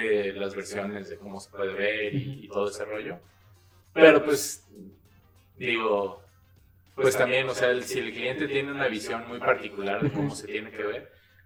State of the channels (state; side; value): identical; both; correlation 1.00